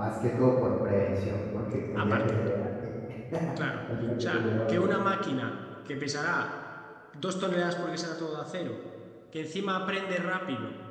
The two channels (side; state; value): both; identical; correlation 1.00